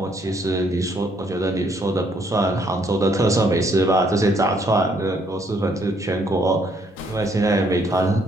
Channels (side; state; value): both; normal; correlation 0.69